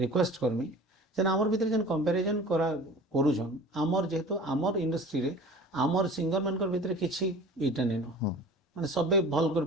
ରିକ୍ୱେଷ୍ଟ କରମି ଯେନ୍ ଆମର ଭିତରେ ଯେନ୍ କମ୍ପାରିଜନ୍ କରୁଛନ୍, ଆମର ଯେହେତୁ ଆମର ଇଣ୍ଡଷ୍ଟ୍ରିରେ ଆମର ସିଙ୍ଗର ମାନଙ୍କର ଭିତରେ କିଛି ଇଟା ନେଇନ, ମାନେ ସବେ ଭଲ କରି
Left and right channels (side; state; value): both; normal; correlation 0.41